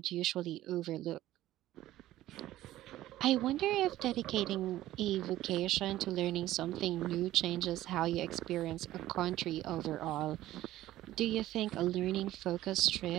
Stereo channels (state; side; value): quieter; left; 14.7 dB